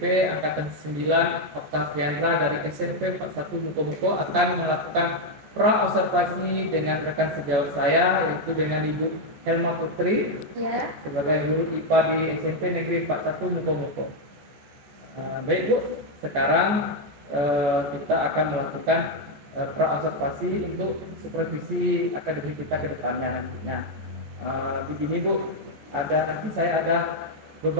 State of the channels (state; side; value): late; left; 14 ms